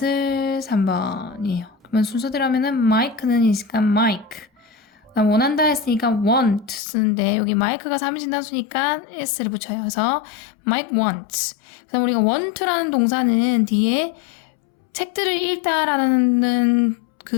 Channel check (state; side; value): drops out; right; at 6.8 s